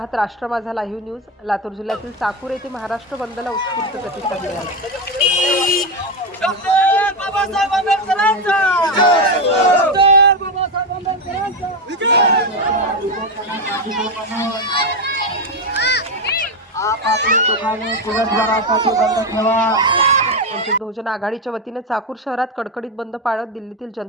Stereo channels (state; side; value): normal; both; correlation 0.11